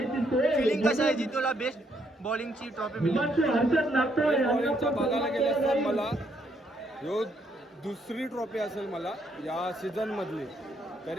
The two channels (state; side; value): normal; both; correlation 0.72